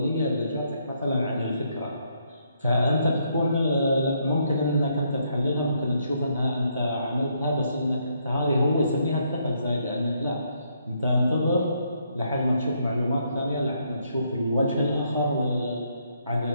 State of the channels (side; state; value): both; inverted; correlation -0.73